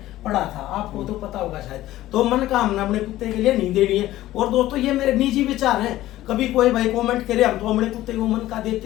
पढ़ा था, आपको तो पता होगा शायद। तो मन का हमने अपने कुत्ते के लिए नहीं देनी है। और दोस्तों ये मेरे निजी विचार हैं, कभी कोई भाई कमेंट करे हम तो अपने कुत्ते को मन का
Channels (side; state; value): right; quieter; 15.2 dB